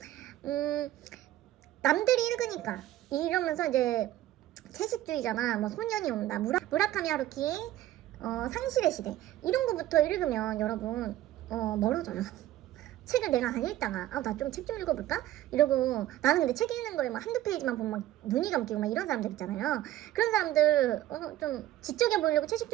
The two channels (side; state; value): left; quieter; 14.1 dB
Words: 남들이 읽으니까 이러면서 이제 채식주의자나 뭐 소년이 온다, 무라카미 하루키의 상실의 시대 이런 거부터 읽으면 여러분 멀어져요. 책을 내가 안 읽다가 나 좀 책 좀 읽어볼까? 이러고, 나는 근데 책 읽는 거에 막 한두 페이지만 보면 막 눈이 감기고 막 이런 사람들 있잖아요. 그런 사람들 좀 지적해 보려고